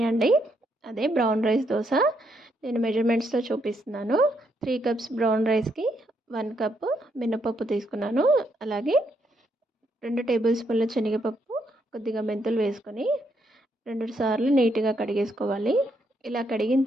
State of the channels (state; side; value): normal; both; correlation 0.76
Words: అండి. అదే brown rice dosa. నేను మెజర్మెంట్స్తో చూపిస్తున్నాను. 3 cups brown రైస్కి 1 cup మినపప్పు తీసుకున్నాను. అలాగే 2 టేబుల్ స్పూన్ల శనగపప్పు, కొద్దిగా మెంతులు వేసుకొని 2 సార్లు నీట్గా కడిగేసుకోవాలి. ఇలా కడిగిన